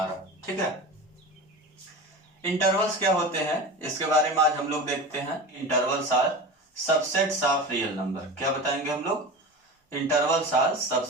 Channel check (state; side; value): normal; both; correlation 0.30